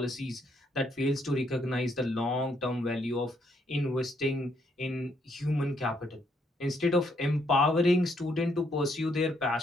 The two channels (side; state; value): both; normal; correlation 0.73